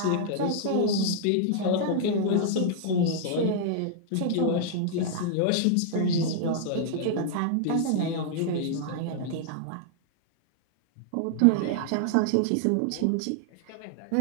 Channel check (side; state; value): both; different; correlation -0.01